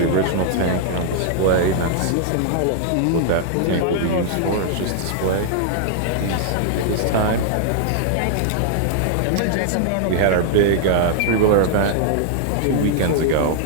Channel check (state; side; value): different; both; correlation -0.01